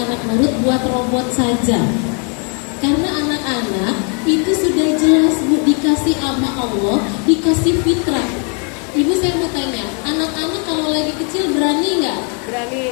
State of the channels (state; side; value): quieter; right; 38.6 dB